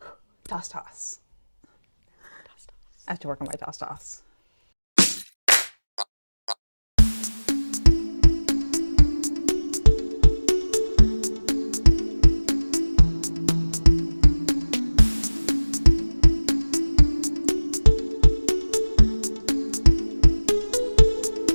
Toss, toss. I have to work on my toss, toss.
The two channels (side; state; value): both; inverted; correlation -1.00